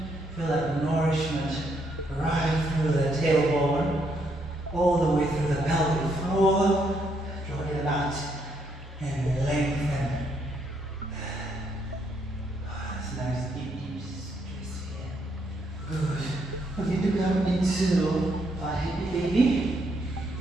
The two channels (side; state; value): both; normal; correlation 0.74